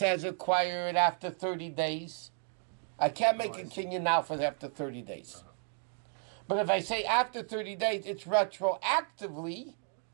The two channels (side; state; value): left; silent; 56 dB below the other